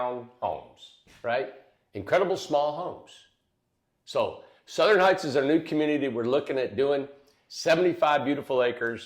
homes, right? Incredible small homes. So Southern Heights is our new community. We're looking at doing 75 beautiful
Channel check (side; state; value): both; identical; correlation 1.00